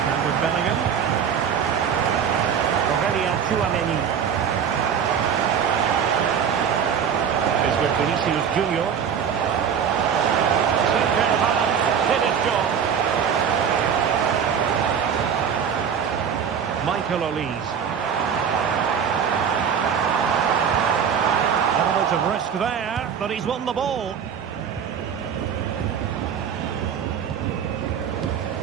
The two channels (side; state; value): left; quieter; 7.6 dB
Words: And with Bellingham. Tchouaméni is with Vinicius Junior. Did his job. Michael Olise. Element of risk there, but he's won the ball.